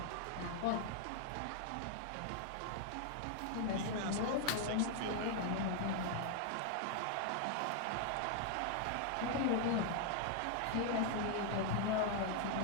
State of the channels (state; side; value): different; both; correlation 0.00